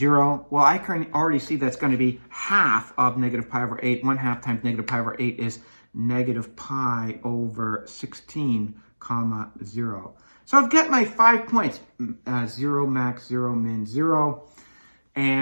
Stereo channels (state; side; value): inverted; both; correlation -1.00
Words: Well, I can already see that's going to be half of negative pi over 8. 1/2 times negative pi over 8 is negative pi over 16 comma 0. So I've got my 5 points, 0 max, 0 min, 0.